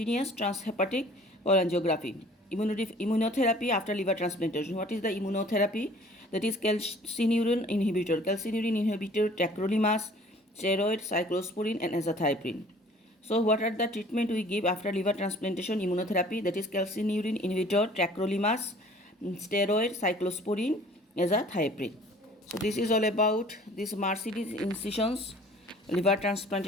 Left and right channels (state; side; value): normal; both; correlation 0.51